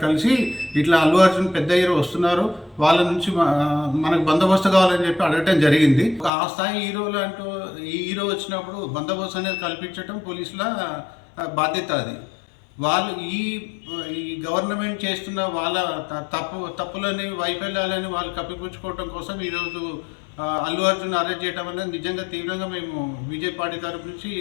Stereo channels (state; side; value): drops out; right; at 6.3 s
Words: కలిసి ఇట్లా అల్లు అర్జున్ పెద్ద హీరో వస్తున్నారు, వాళ్ళ నుంచి మనకు బందోబస్తు కావాలని చెప్పి అడగటం జరిగింది. ఆ స్థాయి హీరోలు అంటూ ఈ హీరో వచ్చినప్పుడు బందోబస్తు అనేది కల్పించడం పోలీసుల బాధ్యత. అది వాళ్ళు ఈ గవర్నమెంట్ చేస్తున్న వాళ్ళ తప్పులని వైఫల్యాలని వాళ్ళు కప్పిపుచ్చుకోవడం కోసం ఈరోజు అల్లు అర్జున్ అరెస్ట్ చేయడం అనేది నిజంగా తీవ్రంగా మేము బీజేపీ పార్టీ తరపు నుంచి